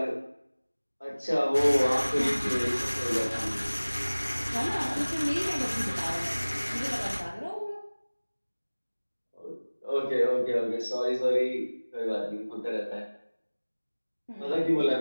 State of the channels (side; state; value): both; inverted; correlation -1.00